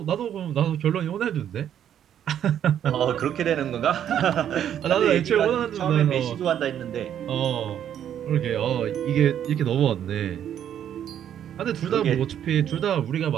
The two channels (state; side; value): quieter; left; 9.9 dB